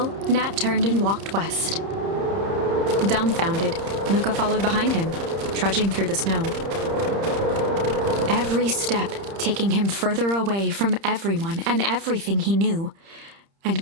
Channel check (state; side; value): late; left; 30 ms